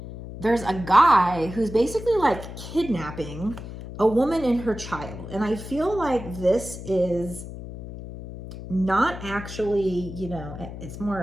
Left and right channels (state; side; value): noise; left; hum, 11 dB below the sound